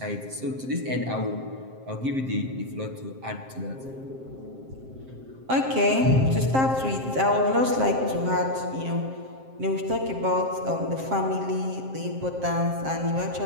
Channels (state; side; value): late; left; 7.6 ms